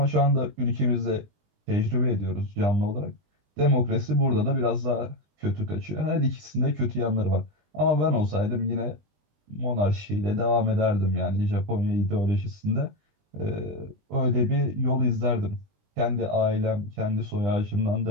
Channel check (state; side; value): late; left; 20 ms